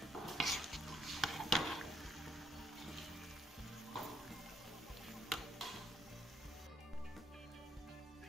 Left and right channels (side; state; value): both; normal; correlation 0.73